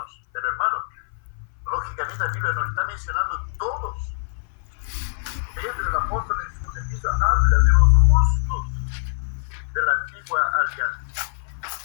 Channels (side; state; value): right; silent; 57 dB below the other